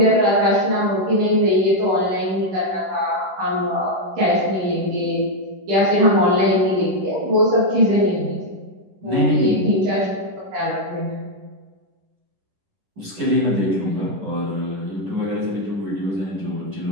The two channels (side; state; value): left; late; 11 ms